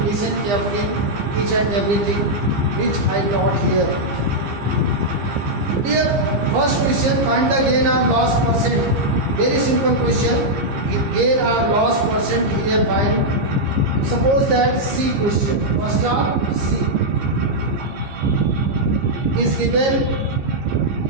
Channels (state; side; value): late; left; 15 ms